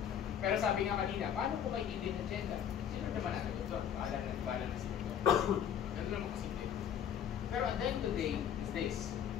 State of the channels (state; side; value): quieter; right; 9.1 dB